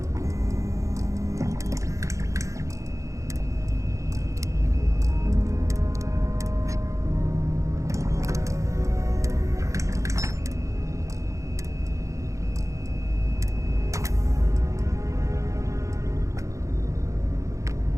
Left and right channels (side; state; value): left; late; 0.15 ms